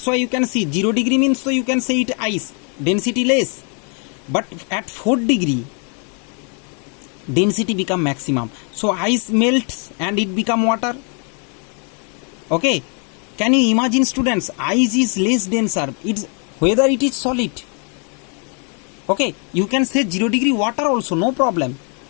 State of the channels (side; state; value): right; quieter; 38.4 dB